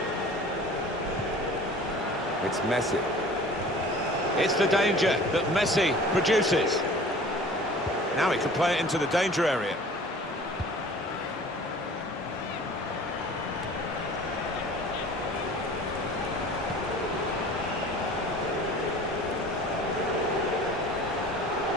It's Messi. It's the danger that Messi produces. Now he can play it into the danger area.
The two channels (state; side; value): normal; both; correlation 0.45